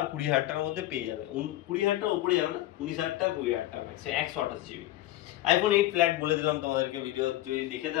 20,000 টাকার মধ্যে পেয়ে যাবে। 20,000 টাকার উপরে যাবে না, 19,000 টাকা 20,000 টাকা ম্যাক্স, 128GB। আইফোন 8 ফ্ল্যাট বলে দিলাম তোমাদেরকে, ভিডিও যদি দেখে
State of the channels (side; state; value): right; quieter; 15.4 dB